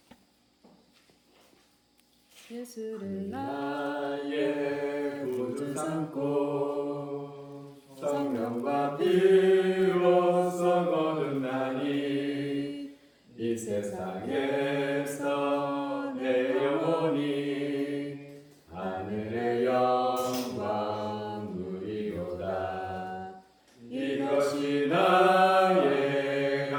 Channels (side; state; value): both; identical; correlation 1.00